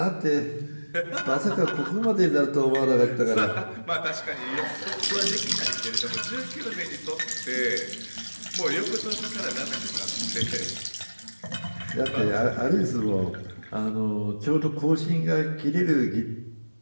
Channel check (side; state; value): both; inverted; correlation -1.00